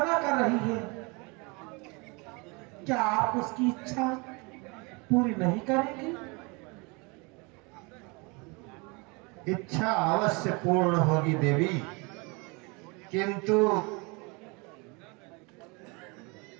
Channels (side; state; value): left; quieter; 28.9 dB